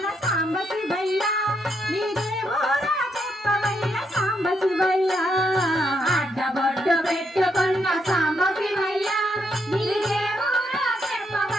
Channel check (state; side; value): normal; both; correlation 0.77